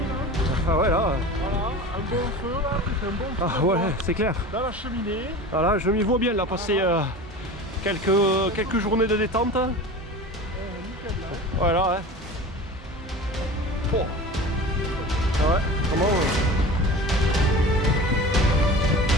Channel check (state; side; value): normal; both; correlation 0.35